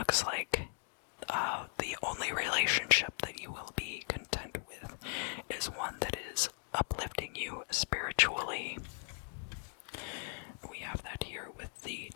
like the only relationship that you will be content with is one that is uplifting you spiritually. We have that here with the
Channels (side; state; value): right; silent; 52 dB below the other